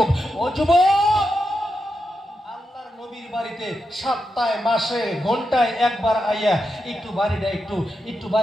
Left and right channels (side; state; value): both; normal; correlation 0.86